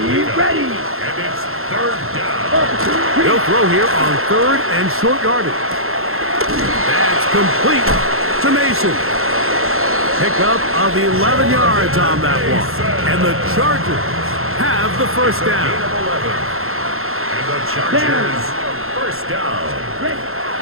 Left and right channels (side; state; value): left; late; 0.62 ms